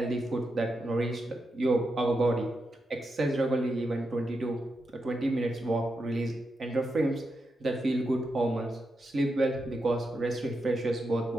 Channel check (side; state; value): both; normal; correlation 0.86